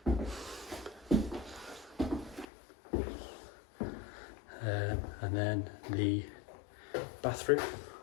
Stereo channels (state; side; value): drops out; right; at 2.5 s